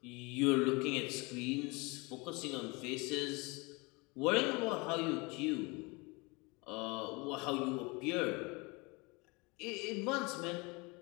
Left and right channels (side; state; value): right; quieter; 27.1 dB